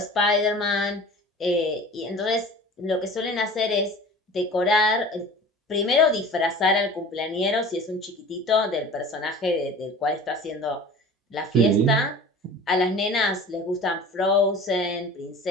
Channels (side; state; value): both; normal; correlation 0.40